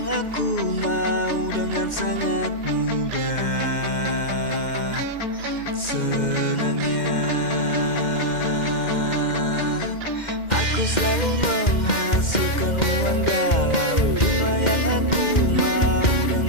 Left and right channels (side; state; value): right; late; 2.1 ms